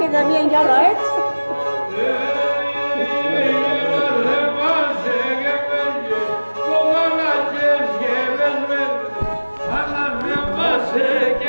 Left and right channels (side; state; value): both; inverted; correlation -1.00